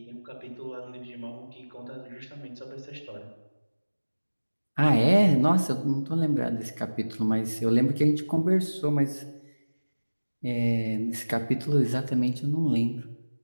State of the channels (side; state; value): both; inverted; correlation -1.00